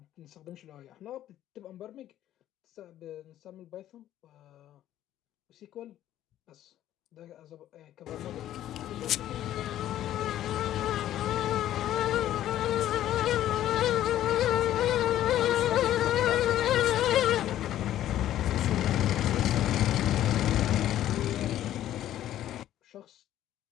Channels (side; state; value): right; quieter; 12.4 dB